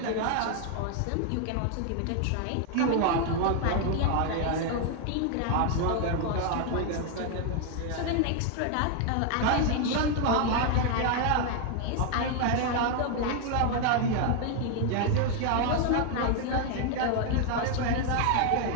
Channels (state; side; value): different; both; correlation 0.00